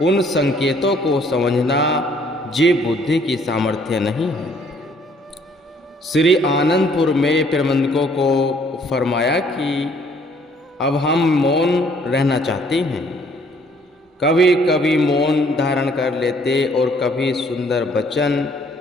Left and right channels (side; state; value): both; normal; correlation 0.62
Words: उन संकेतों को समझना ये बुद्धि की सामर्थ्य नहीं है। श्री आनंदपुर में प्रबंधकों को फरमाया कि अब हम मौन रहना चाहते हैं। कभी कभी मौन धारण कर लेते और कभी सुंदर वचन